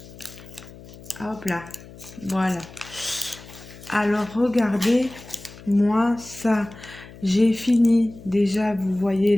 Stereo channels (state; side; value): noise; left; hum, 18 dB below the sound